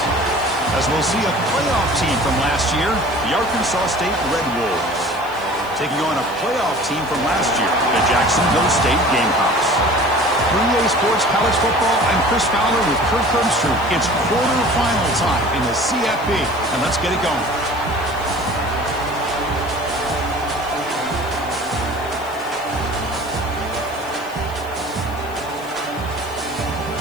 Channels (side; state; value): left; noise; hiss, 22 dB below the sound